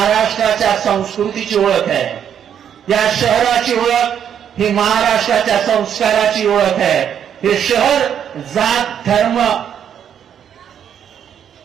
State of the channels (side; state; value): left; quieter; 8.8 dB